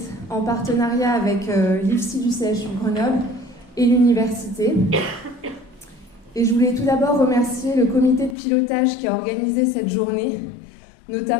en partenariat avec l'IFSI du CHU de Grenoble et l'université. Et je voulais tout d'abord remercier le comité de pilotage qui a organisé cette journée,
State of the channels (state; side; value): drops out; right; at 8.3 s